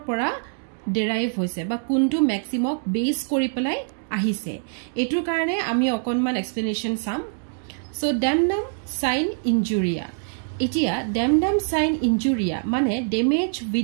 derive hoise ba kuntu maxim ok base kori pelai ahise. Etur karone ami okonman explanation sam. So damnum sine injuria. Itia damnum sine injuria mane damage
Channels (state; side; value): silent; left; digital silence